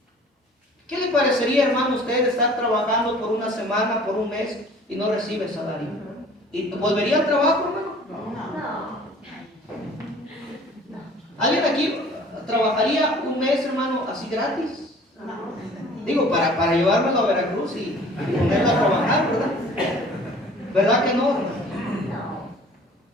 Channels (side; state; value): both; normal; correlation 0.50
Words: ¿Qué le parecería, hermano, usted estar trabajando por una semana, por un mes y no recibe salario? ¿Y volvería al trabajo, hermano? No. ¿Alguien aquí trabajaría un mes, hermano, así gratis? Digo, para llevármelo a Veracruz y ponerlo a trabajar, ¿verdad? ¿Verdad que no, hermano?